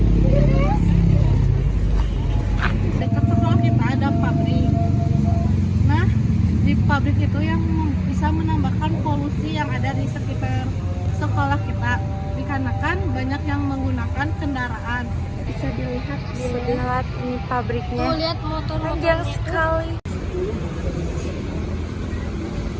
dekat sekolah kita ada pabrik. Nah, di pabrik itu yang bisa menambahkan polusi yang ada di sekitar sekolah kita, dikarenakan banyak yang menggunakan kendaraan. Bisa dilihat ini pabriknya. Tuh, lihat motor panjang sekali.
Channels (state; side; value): identical; both; correlation 1.00